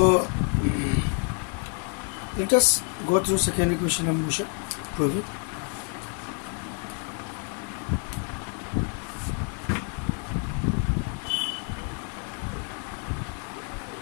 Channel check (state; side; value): quieter; right; 38.0 dB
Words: let us go through second equation of motion, prove it.